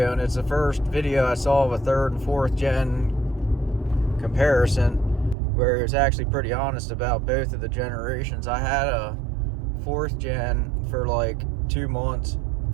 and it's the first video I saw of a third and fourth gen comparison where he was actually pretty honest about both of the generations. I had a fourth gen for like 2 months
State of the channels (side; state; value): left; drops out; at 5.4 s